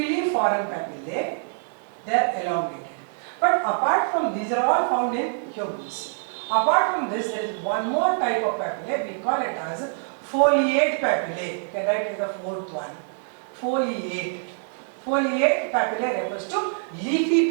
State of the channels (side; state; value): left; silent; 59 dB below the other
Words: papillae. They are elongated. But apart from these are all found in humans. Apart from this, there is one more type of papillae. We call it as foliate papillae. You can write it as the fourth one. Foliate. Foliate papillae refers to leafy